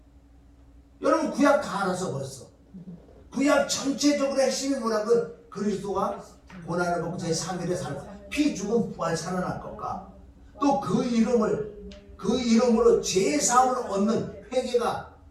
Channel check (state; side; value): identical; both; correlation 1.00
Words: 여러분 구약 다 알아서 벌써. 구약 전체적으로 핵심이 뭐라고? 그리스도가 고난을 받고 제3일에 피 죽음 부활 살아날 것과 또 그 이름으로 제4음을 얻는 회개가